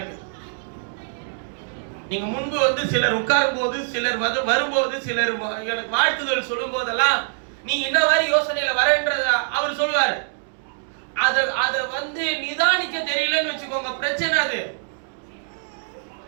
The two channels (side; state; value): left; silent; digital silence